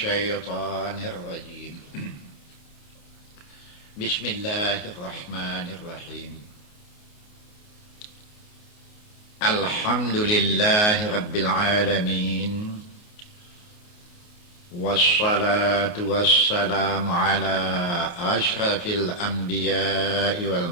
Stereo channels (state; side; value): late; right; 28 ms